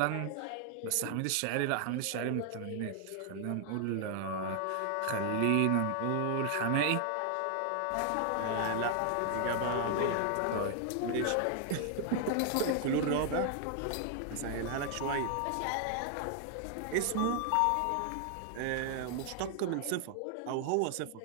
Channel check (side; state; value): both; different; correlation 0.00